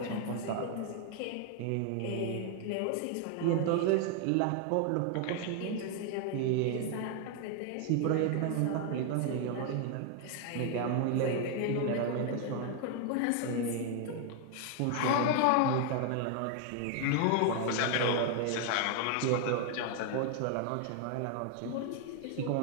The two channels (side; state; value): both; different; correlation 0.00